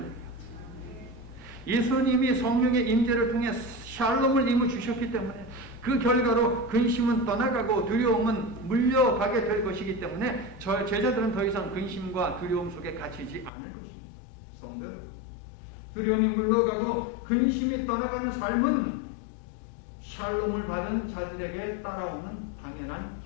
예수님이 성령의 임재를 통해 샬롬을 이루 주셨기 때문에 그 결과로 근심은 떠나가고 두려움은 물려가게 될 것이기 때문에 저 제자들은 더 이상 근심과 두려움 속에 갇히지 않을 것입니다. 성도 여러분, 두려움이 물러가고 근심이 떠나가는 삶은 샬롬을 받은 자들에게 따라오는 당연한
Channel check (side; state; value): right; drops out; at 13.5 s